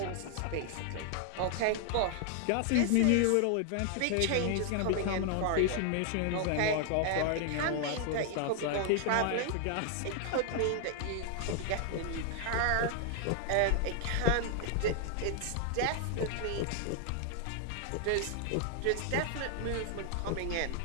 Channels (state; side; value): different; both; correlation 0.00